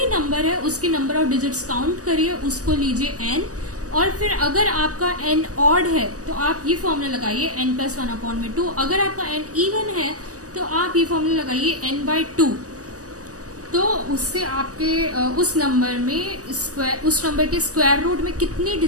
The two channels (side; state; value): left; late; 0.66 ms